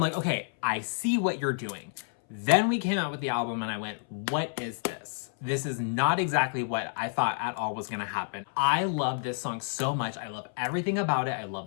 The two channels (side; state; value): right; silent; 58 dB below the other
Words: like, okay, I see what you're doing. Then we came out with the album and I went, what is this? This is not exactly what I thought at all was gonna happen. I love this song so much. I love everything about it. I